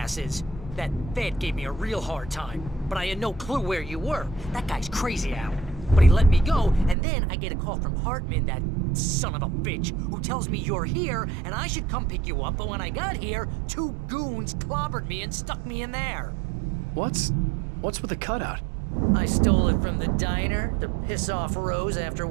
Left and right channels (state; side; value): drops out; left; at 7.0 s